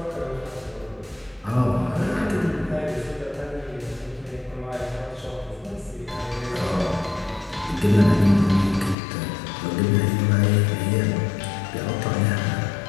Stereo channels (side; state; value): right; drops out; at 9.0 s